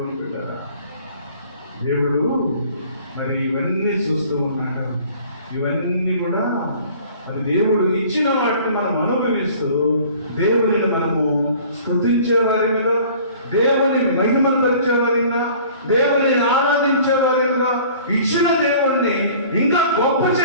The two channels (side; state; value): both; inverted; correlation -0.49